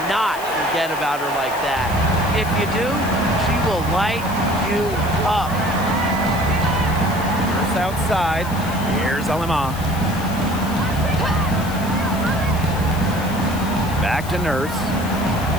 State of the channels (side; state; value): left; noise; hiss, 14 dB below the sound